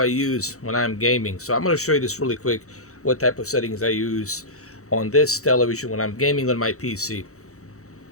use when I'm gaming. So I'm going to show you this really quick, what type of settings I use on this television when I'm gaming on my PC.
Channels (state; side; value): late; right; 0.65 ms